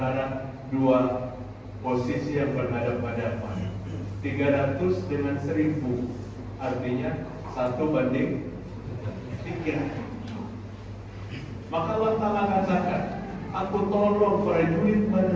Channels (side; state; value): both; identical; correlation 1.00